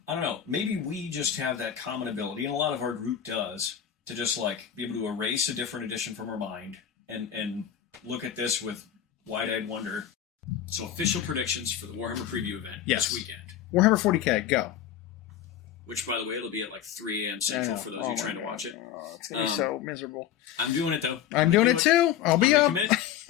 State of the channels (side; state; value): right; quieter; 10.0 dB